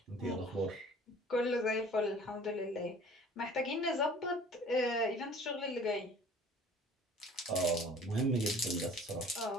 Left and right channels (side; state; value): both; normal; correlation 0.49